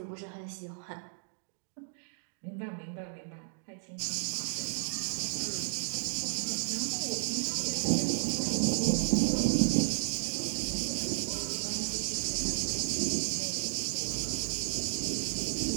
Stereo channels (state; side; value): silent; left; digital silence